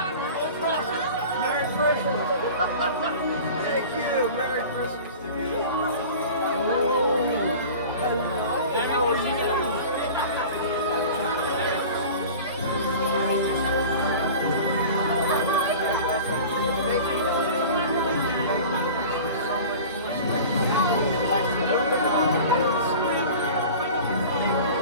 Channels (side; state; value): both; inverted; correlation -0.38